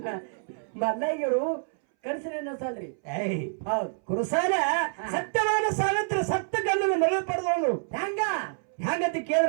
ಮಲ್ಲಯ್ಯರು ಕನಸಿನ ಸಾಲ್ರಿ ಏಯ್ ಹೌದು ಕುರುಸಾಲ ಸತ್ಯವಾದ ಸಾವಿತ್ರ ಸತ್ತ ಗಂಡನ ಮರಳು ಪಡೆದವಳು ಹೆಂಗ ಹ್ಯಾಂಗಂತ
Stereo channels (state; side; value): silent; left; 60 dB below the other